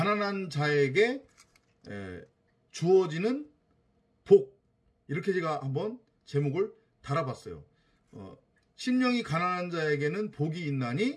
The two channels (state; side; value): identical; both; correlation 1.00